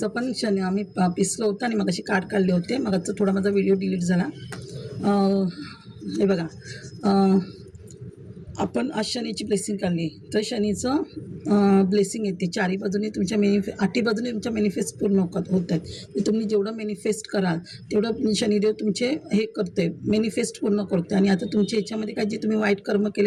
आपण शनी आम्ही पिसलं होतं आणि मग अशी कार्ड काढले होते. मग आजचा थोडा माझा व्हिडिओ डिलीट झाला. हे बघा आपण आज शनीची ब्लेसिंग काढली तर शनीचं ब्लेसिंग येते. चारी बाजूने तुमच्या आठी बाजूने तुमच्या मॅनिफेस्ट पूर्ण होत आहेत. तुम्ही जेवढं मॅनिफेस्ट कराल तेवढं शनिदेव तुमचे हे करते, मॅनिफेस्ट पूर्ण करते. आणि आता तुमच्या याच्यामध्ये काय जे तुम्ही वाईट कर्म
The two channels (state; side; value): identical; both; correlation 1.00